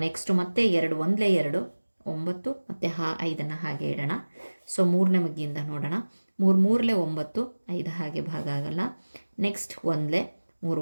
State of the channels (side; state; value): both; inverted; correlation -1.00